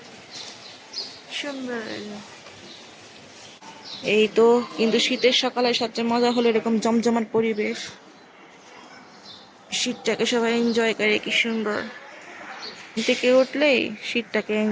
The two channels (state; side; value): identical; both; correlation 1.00